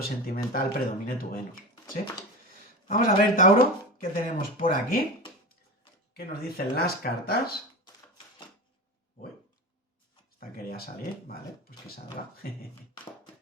sentimental predomine tu Venus, ¿sí? Vamos a ver, Tauro, ¿qué tenemos por aquí? ¿Qué nos dicen las cartas? Uy, esta quería salir, vale, pues que salga.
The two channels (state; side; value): normal; both; correlation 0.27